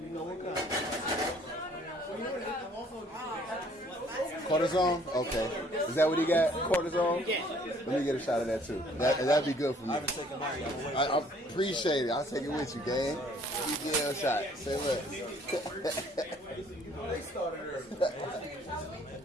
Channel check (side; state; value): both; normal; correlation 0.59